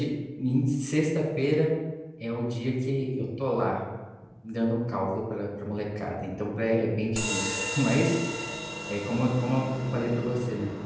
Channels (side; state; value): both; identical; correlation 1.00